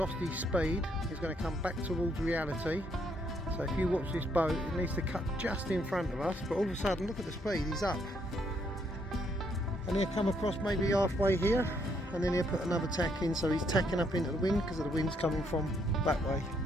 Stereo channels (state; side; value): normal; both; correlation 0.72